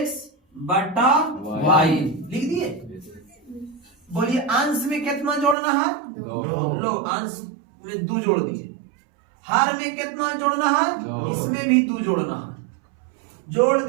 बटा y लिख दिए। बोलिए अंश में कितना जोड़ना है? 2। लो अंश में 2 जोड़ दिए। हर में कितना जोड़ना है? 2। इसमें भी 2 जोड़ना है। जोड़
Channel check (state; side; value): drops out; left; at 5.6 s